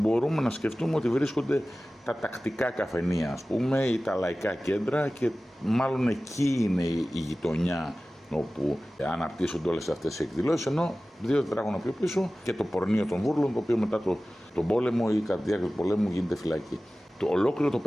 να σκεφτούμε ότι βρίσκονται τα τακτικά καφενεία, ας πούμε, ή τα λαϊκά κέντρα, και μάλλον εκεί είναι η γειτονιά όπου αναπτύσσονται όλες αυτές οι εκδηλώσεις, ενώ 2 τετράγωνα πιο πίσω και το πορνείο των Βούρλων, το οποίο μετά τον πόλεμο ή κατά τη διάρκεια του πολέμου γίνεται φυλακή. Ολόκληρο το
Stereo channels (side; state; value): both; normal; correlation 0.97